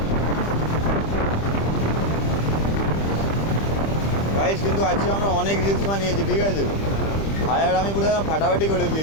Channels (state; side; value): late; right; 25 ms